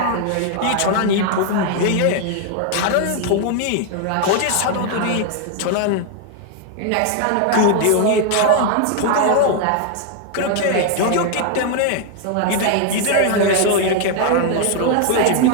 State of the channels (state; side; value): different; both; correlation 0.00